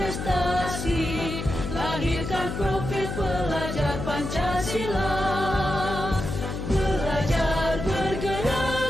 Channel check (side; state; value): left; noise; hum, 5 dB below the sound